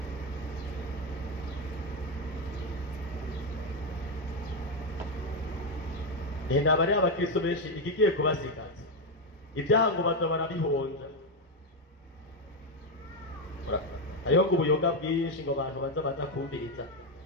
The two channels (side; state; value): both; normal; correlation 0.06